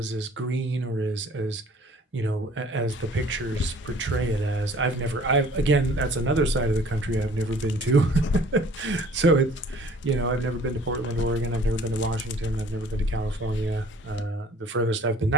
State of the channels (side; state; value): both; normal; correlation 0.52